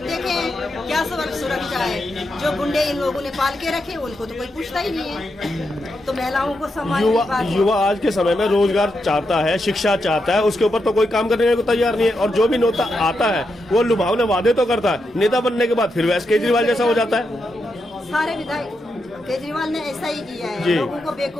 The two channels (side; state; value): both; normal; correlation 0.84